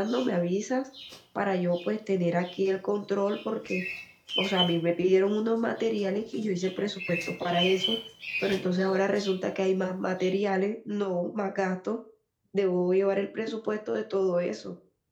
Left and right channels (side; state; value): both; identical; correlation 1.00